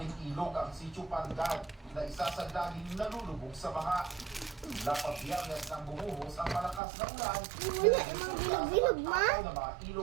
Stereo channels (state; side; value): drops out; left; at 6.8 s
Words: ilog ang Sitio Pandan na isa sa laging nalulubog sa baha. Dapat biyernes nang bumuhos ang malakas na ulan. Wala emang bilog-bilog, ma. Na mga